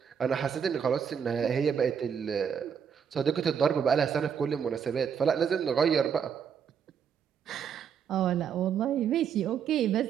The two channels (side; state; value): left; quieter; 7.5 dB